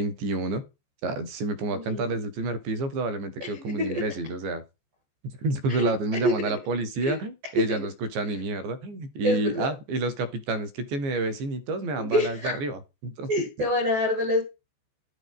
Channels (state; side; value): late; left; 14 ms